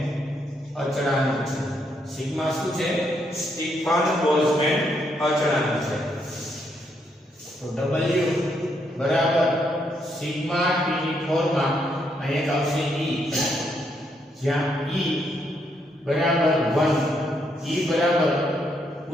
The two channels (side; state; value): both; normal; correlation 0.76